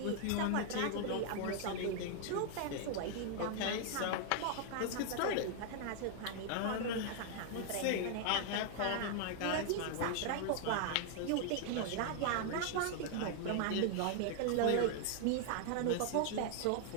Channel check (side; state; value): both; different; correlation 0.00